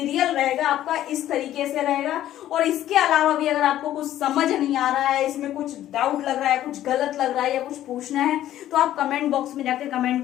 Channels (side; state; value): right; quieter; 12.7 dB